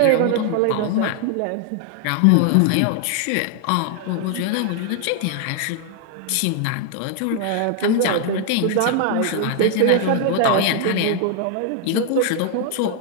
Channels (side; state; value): both; different; correlation 0.00